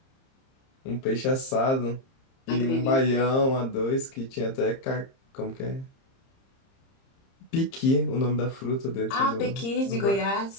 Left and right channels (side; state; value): right; late; 30 ms